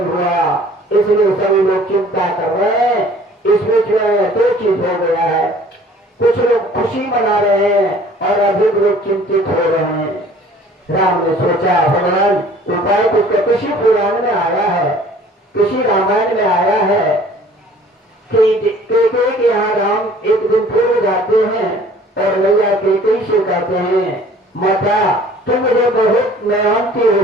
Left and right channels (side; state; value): both; normal; correlation 0.52